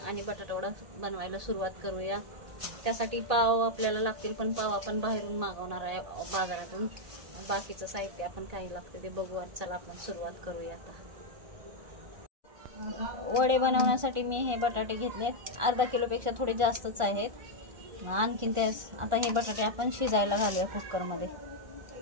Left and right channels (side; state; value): left; late; 1.4 ms